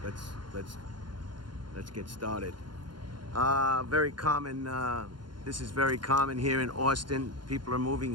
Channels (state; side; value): late; left; 0.71 ms